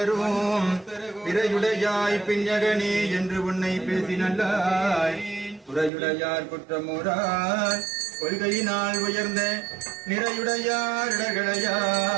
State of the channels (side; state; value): left; drops out; at 5.9 s